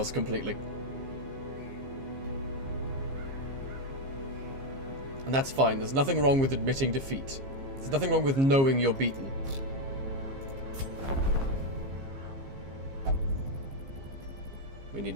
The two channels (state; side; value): late; left; 15 ms